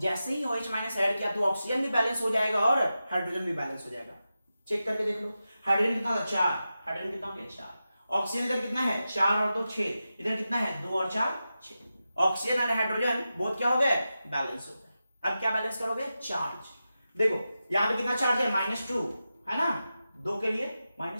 ही OH माइनस ऐड किया तो ऑक्सीजन भी बैलेंस हो जाएगा और हाइड्रोजन भी बैलेंस हो जाएगा। चेक करके देख लो। हाइड्रोजन कितना था? 4। हाइड्रोजन कितना हो गया? 4। ऑक्सीजन इधर कितना है? 4 और 2 6। इधर कितना है? 2 और 4 6। ऑक्सीजन और हाइड्रोजन बहुत क्या हो गए? बैलेंस हो गए। अब क्या बैलेंस करोगे? चार्ज। देखो यहाँ पे कितना चार्ज है? -2 है ना, 2 के लिए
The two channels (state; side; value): inverted; both; correlation -0.92